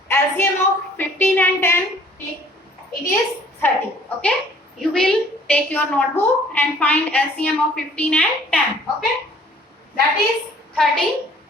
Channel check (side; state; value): both; normal; correlation 0.55